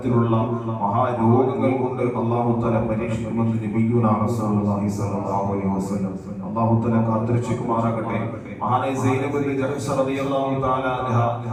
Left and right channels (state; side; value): identical; both; correlation 1.00